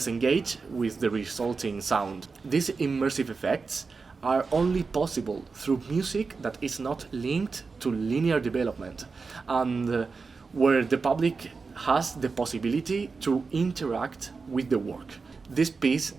engaged with the resulting sound. These immersive effects are only possible through music that is not linked to linear development, and where the public has the possibility to interact with the work. This piece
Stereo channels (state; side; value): quieter; left; 4.6 dB